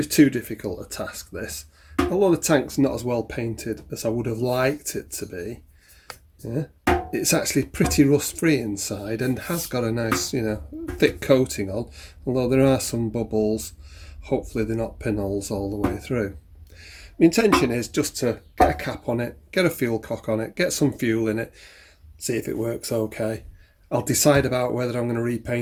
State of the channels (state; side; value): identical; both; correlation 1.00